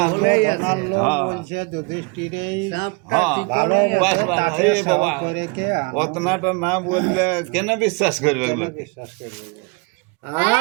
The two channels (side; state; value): left; quieter; 30.0 dB